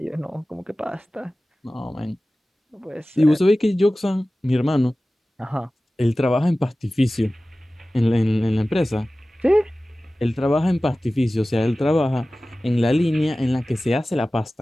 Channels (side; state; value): both; normal; correlation 0.97